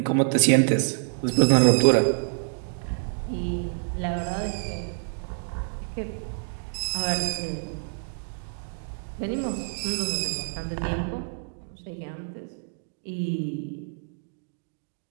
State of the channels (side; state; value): left; silent; digital silence